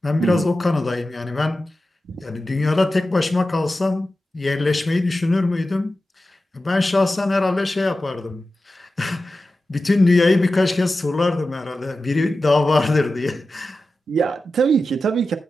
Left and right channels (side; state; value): both; normal; correlation 0.93